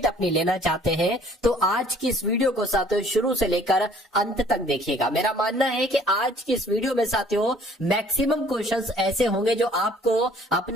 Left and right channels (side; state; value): both; normal; correlation 0.56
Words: अपनी लेना चाहते हैं, तो आज की इस वीडियो को साथियों शुरू से लेकर अंत तक देखिएगा। मेरा मानना है कि आज की इस वीडियो में साथियों मैक्सिमम क्वेश्चंस ऐसे होंगे जो आपको